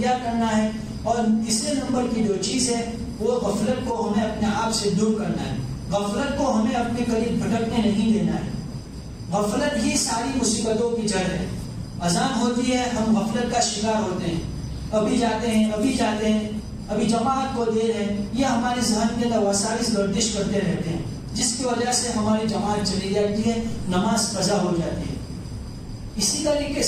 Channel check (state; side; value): identical; both; correlation 1.00